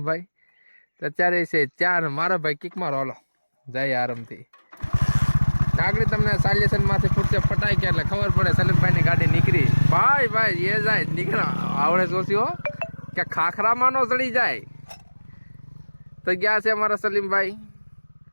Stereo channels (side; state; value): both; inverted; correlation -1.00